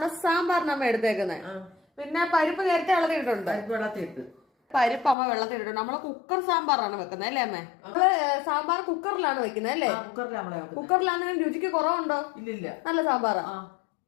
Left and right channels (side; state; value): right; drops out; at 5.2 s